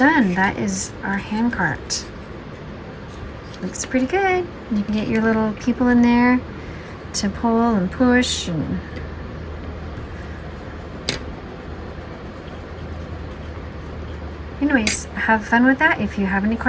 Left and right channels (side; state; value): both; identical; correlation 1.00